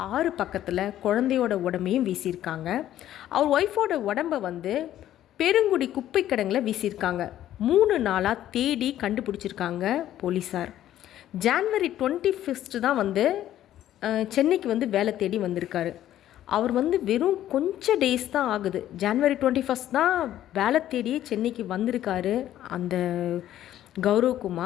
6 பக்கத்தில் குழந்தையோட உடம்பையும் வீசியிருக்காங்க. அவர் ஒய்ஃபோட உடம்பை பெருங்குடி குப்பை கிடங்கில் வீசியிருக்காங்க. 3 நாளாக தேடி கண்டுபிடிச்சிருக்காங்க போலீஸார். ஜனவரி 25 தான் சென்னைக்கு வேலை தேடி வந்திருக்காரு. அவர் வெறும் கொஞ்சம் டேஸ் தான் ஆகுது. ஜனவரி 21 தான் வேலை தேடியே சென்னைக்கு வந்திருக்காரு அந்த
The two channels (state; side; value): quieter; right; 12.4 dB